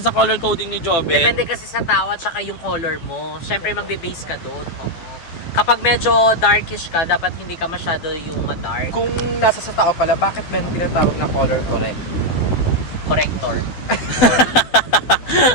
color coding ni Joben? Depende kasi sa tao at saka yung color mo. Siyempre, magbe-base ka doon. Oo. Kapag medyo darkish ka, dapat hindi ka masyado yung ma-dark. Kung nasa sa tao pala, bakit meron tinatawag na color correct? Corrector.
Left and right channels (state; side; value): late; right; 12 ms